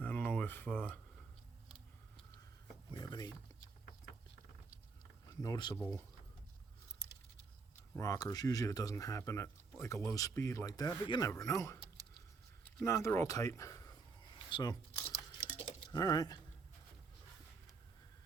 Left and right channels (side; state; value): left; quieter; 4.7 dB